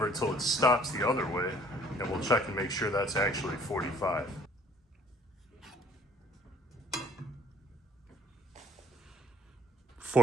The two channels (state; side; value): normal; both; correlation 0.59